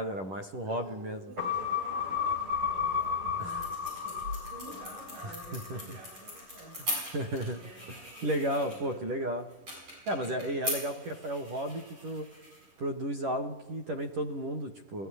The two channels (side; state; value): left; late; 11 ms